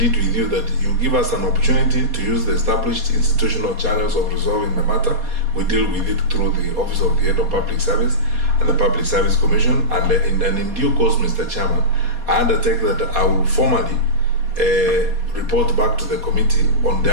with you that you give us an opportunity to use the established institutional channels of resolving the matter. We deal with it through the Office of the Head of Public Service and the Public Service Commission, and in due course, Mr. Chairman, I undertake that I will formally report back to the committee on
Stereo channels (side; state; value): left; late; 4.2 ms